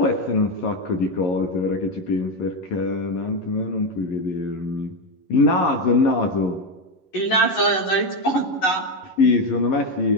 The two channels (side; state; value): right; late; 11 ms